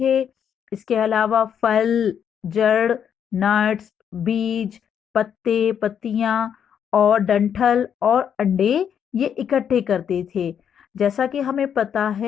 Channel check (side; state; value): right; quieter; 8.3 dB